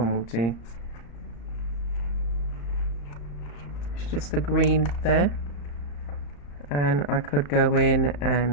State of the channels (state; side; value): late; right; 35 ms